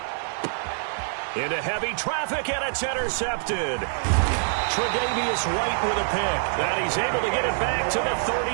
Into heavy traffic, and it's intercepted. Tre'Davious White with a pick. And he's able to get it back to the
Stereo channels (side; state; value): left; silent; digital silence